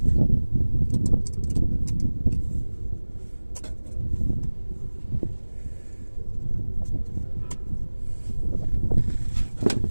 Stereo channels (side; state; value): both; inverted; correlation -1.00